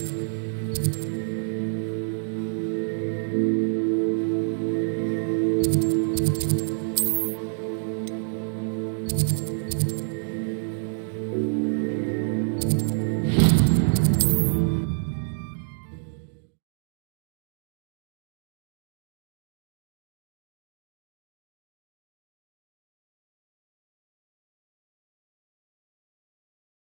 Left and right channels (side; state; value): left; silent; digital silence